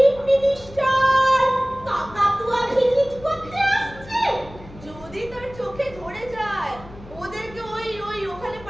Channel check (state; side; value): noise; left; hum, 18 dB below the sound